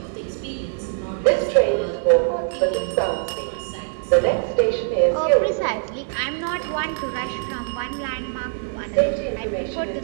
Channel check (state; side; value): silent; left; digital silence